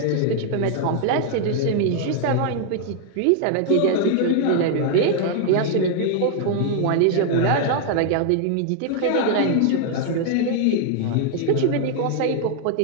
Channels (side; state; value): both; different; correlation 0.00